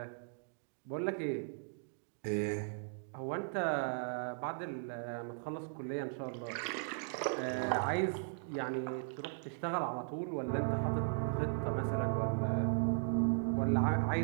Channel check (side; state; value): left; silent; digital silence